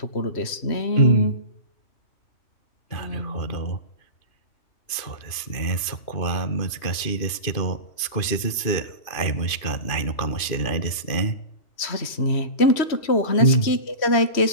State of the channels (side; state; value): right; late; 2.5 ms